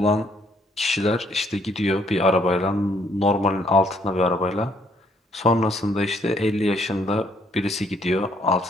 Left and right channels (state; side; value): normal; both; correlation 0.67